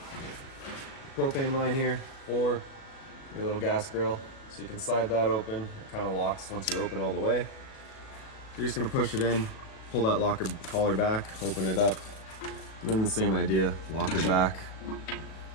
Propane line here for your little gas grill. So you can slide that open. It kind of locks once you open all the way. You're just gonna push it in, pull that locker collar back, open it up. And then the same idea, locker back.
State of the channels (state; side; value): late; right; 37 ms